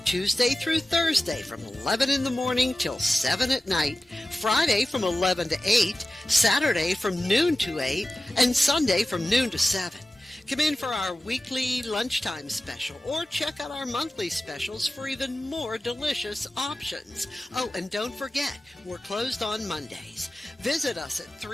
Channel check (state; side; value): normal; both; correlation 0.95